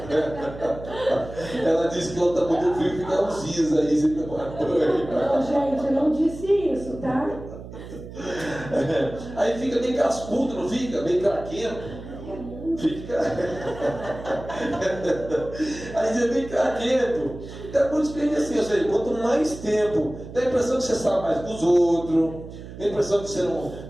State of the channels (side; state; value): right; noise; hum, 13 dB below the sound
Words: Ela disse que ela está muito frio, fica uns dias aí sem tomar banho. Não, gente, eu não disse isso, tá? Aí fica meio cascudo, não fica? Meio craquento. Fica. Aí você vem craquento. Então, por isso que ele assim, ou seja, quanto mais tempo, dá a impressão que você sabe mais dos outros, dá a impressão que